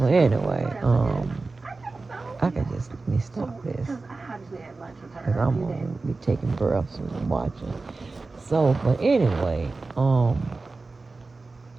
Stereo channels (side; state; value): left; quieter; 3.7 dB